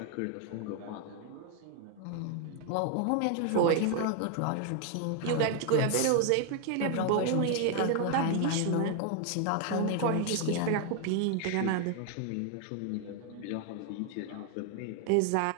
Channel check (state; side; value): different; both; correlation 0.00